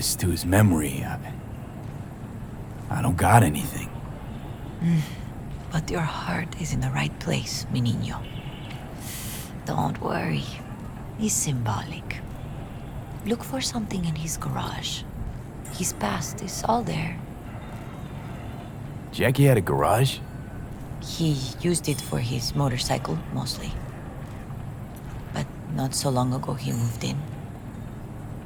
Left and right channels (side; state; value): both; identical; correlation 1.00